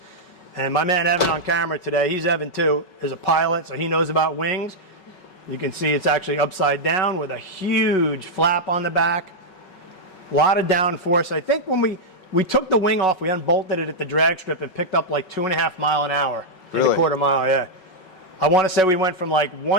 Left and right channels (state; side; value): late; right; 5.4 ms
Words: And my man Evan on camera today, he's Evan too, is a pilot, so he knows about wings. You can see it's actually upside down with a huge flap on the back. A lot of downforce. I think when we took the wing off, we unbolted it at the drag strip and picked up like 2.5 miles an hour. Really? In a quarter mile, yeah. I want to say we went from like